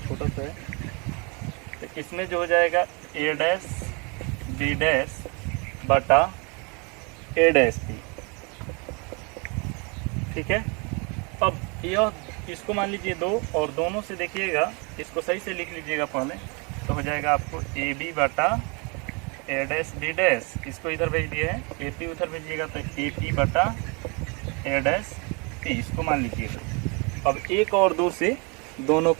छोटा सा है, तो इसमें जो हो जाएगा ए डैश बी डैश बटा ए डैश पी, ठीक है। अब यह इसको मान लीजिए दो और दोनों से देखिएगा, इसको सही से लिख लीजिएगा पहले, तो हो जाएगा आपको ए बी बटा ए डैश बी डैश, इसको इधर भेज दिए हैं, ए पी उधर भेजिएगा तो ए पी बटा ए डैश पी, इसको मान लीजिएगा। अब एक और दो से दोनों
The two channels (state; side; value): quieter; left; 32.0 dB